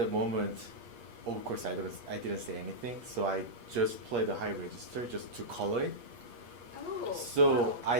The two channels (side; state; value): left; late; 8.4 ms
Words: moment, of course, I didn't say anything, so I just play the high register just to color it. Oh. So I